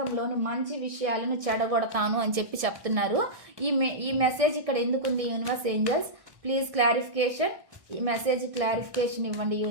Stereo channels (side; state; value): left; late; 1.6 ms